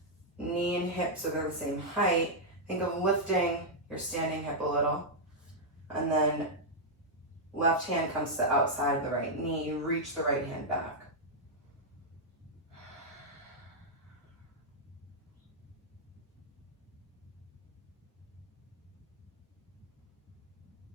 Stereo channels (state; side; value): normal; both; correlation -0.05